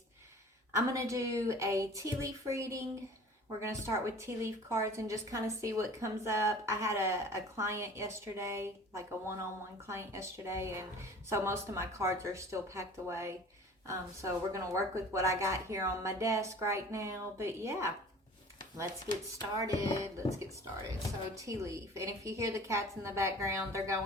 I'm gonna do a tea leaf reading. We're going to start with tea leaf cards and just kind of see what comes up. I had a client yesterday, like a one-on-one client yesterday, and so most of my cards are still packed away. So we're going to work with what I got here on my desk right now. But yeah, let's get started. So tea leaf. And if you hear the cats in the background, they're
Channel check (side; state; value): both; normal; correlation 0.44